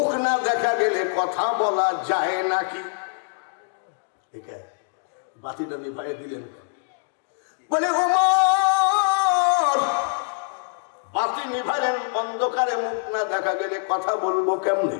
না দেখা গেলে কথা বলা যায় নাকি? বাতিটা নিভাইয়া দিলেন। বলে, ওমর, বাতি নিভাইলেন, অন্ধকারে মুখ না দেখা গেলে কথা বলবো কেমনে?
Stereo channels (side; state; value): right; silent; digital silence